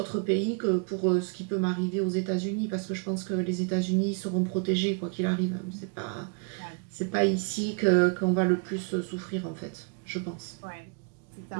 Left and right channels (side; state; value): left; quieter; 39.7 dB